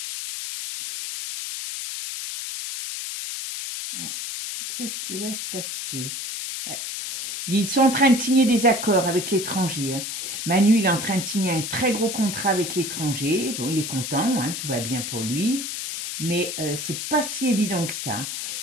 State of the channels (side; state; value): left; noise; hiss, 5 dB below the sound